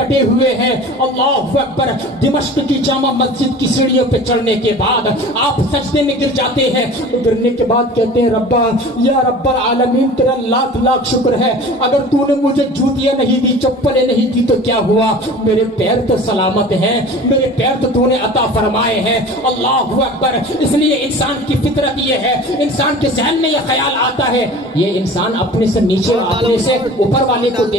ہوئے ہیں۔ اللہ اکبر! دمشق کی جامع مسجد کی سیڑھیوں پہ چڑھنے کے بعد آپ سجدے میں گر جاتے ہیں، گرنے کے بعد کہتے ہیں ربا یا رب العالمین تیرا لاکھ لاکھ شکر ہے، اگر تو نے مجھے جوتیاں نہیں دی، چپلیں نہیں دی تو کیا ہوا، میرے پیر تو سلامت ہیں، میرے پیر تو نے عطا فرمائے ہیں۔ اللہ اکبر! اس لیے انسان کی فطرت یہ ہے، انسان کے ذہن میں یہ خیال آتا ہے، یہ انسان اپنے سے نیچے اپنے سے اوپر والے کو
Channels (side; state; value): both; normal; correlation 0.40